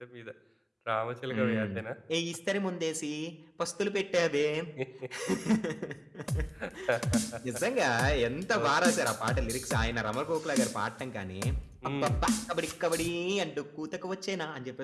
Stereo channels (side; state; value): both; identical; correlation 1.00